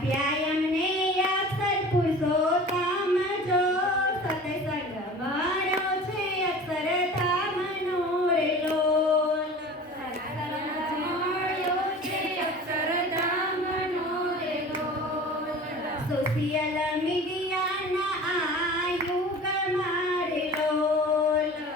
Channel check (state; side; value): normal; both; correlation 0.39